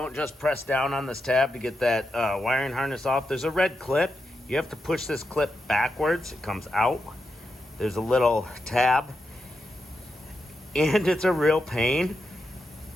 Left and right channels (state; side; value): normal; both; correlation 0.86